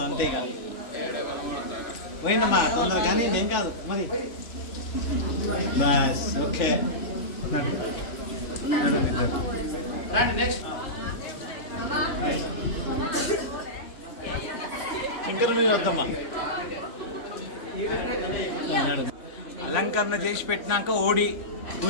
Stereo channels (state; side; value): late; right; 3.5 ms